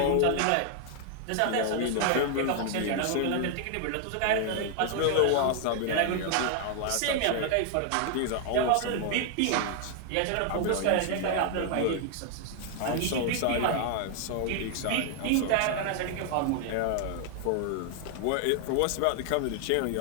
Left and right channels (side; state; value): both; different; correlation 0.00